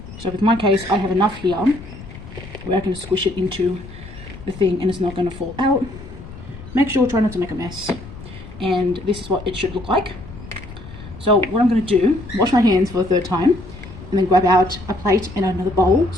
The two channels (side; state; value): left; noise; rumble, 15 dB below the sound